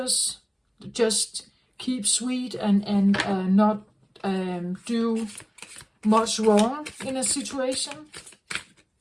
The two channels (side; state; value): both; identical; correlation 1.00